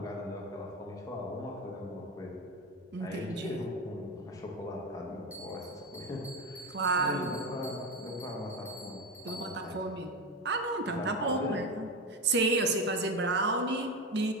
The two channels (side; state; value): both; normal; correlation 0.19